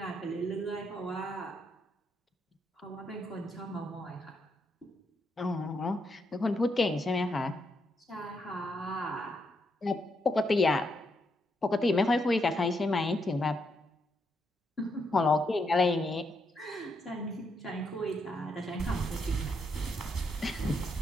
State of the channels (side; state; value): both; normal; correlation 0.79